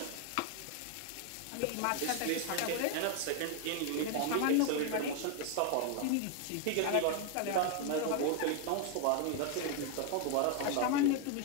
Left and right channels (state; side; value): different; both; correlation 0.01